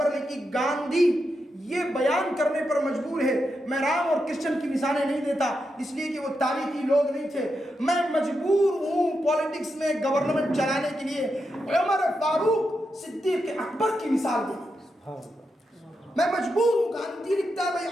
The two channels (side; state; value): both; normal; correlation 0.86